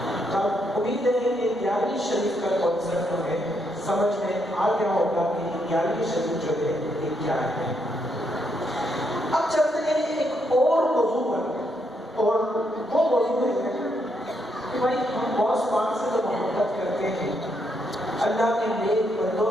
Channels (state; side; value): normal; both; correlation 0.77